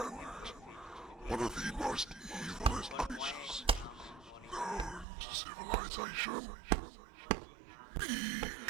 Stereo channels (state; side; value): drops out; left; at 5.1 s